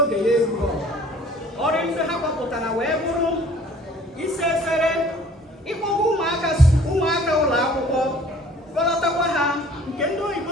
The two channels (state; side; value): normal; both; correlation 0.53